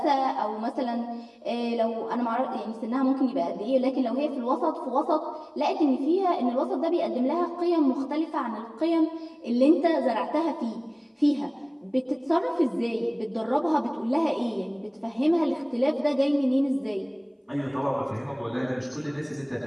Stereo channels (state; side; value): identical; both; correlation 1.00